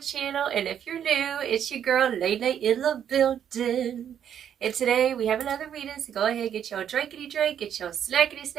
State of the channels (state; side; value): quieter; left; 9.2 dB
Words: channel. And if you're new, it's your girl, Lele in the building. And today we have another reading, so go ahead, get your drinkity drink, get your snackity